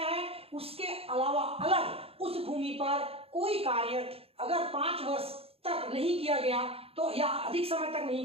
है उसके अलावा अलग उस भूमि पर कोई कार्य अगर 5 वर्ष तक नहीं किया गया तो या अधिक समय तक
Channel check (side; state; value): left; late; 0.28 ms